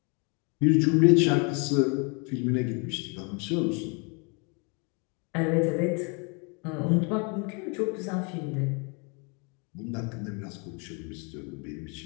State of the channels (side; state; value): right; quieter; 33.9 dB